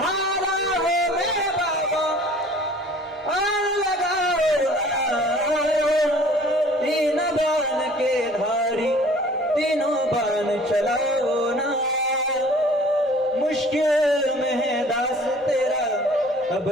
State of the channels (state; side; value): normal; both; correlation 0.50